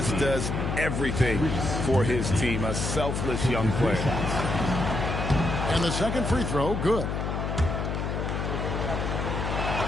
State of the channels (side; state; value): left; noise; hum, 2 dB below the sound